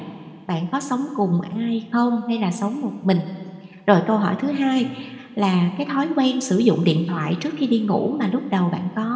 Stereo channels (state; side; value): identical; both; correlation 1.00